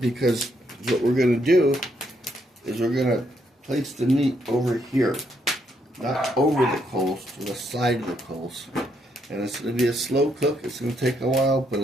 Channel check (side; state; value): both; normal; correlation 0.75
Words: what we're going to do is we're going to place the meat over here. Not over the coals, to the side of the coals. And it's going to be a slow cook. It's going to take a while, but